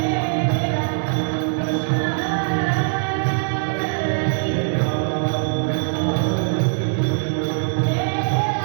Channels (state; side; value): silent; left; 61 dB below the other